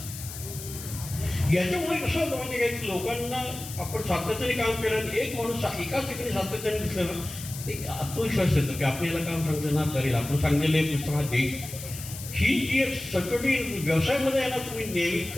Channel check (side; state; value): left; noise; hiss, 11 dB below the sound